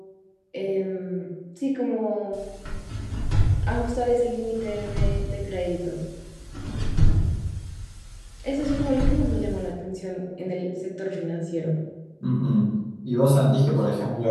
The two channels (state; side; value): identical; both; correlation 1.00